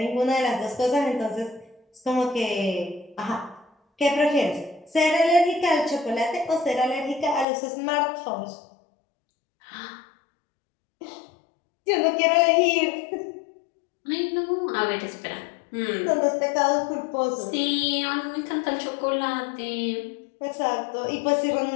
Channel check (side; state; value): right; drops out; at 7.5 s